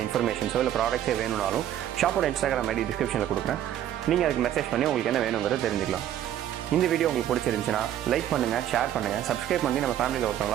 இன்ஃபர்மேஷன்ஸோ இல்லை ப்ராடக்ட்ஸே வேணும்னாலும் ஷாப்போட இன்ஸ்டாகிராம் ஐடி டிஸ்கிரிப்ஷனில் கொடுக்குறேன். நீங்கள் அதுக்கு மெசேஜ் பண்ணி உங்களுக்கு என்ன வேணுங்கிறத தெரிஞ்சுக்கலாம். இந்த வீடியோ உங்களுக்கு பிடிச்சிருந்துச்சுன்னா லைக் பண்ணுங்கள், ஷேர் பண்ணுங்கள், சப்ஸ்கிரைப் பண்ணி நம்ம ஃபேமிலியில்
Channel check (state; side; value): quieter; left; 11.4 dB